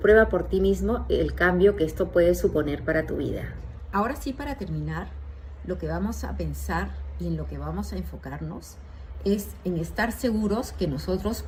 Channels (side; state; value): both; identical; correlation 1.00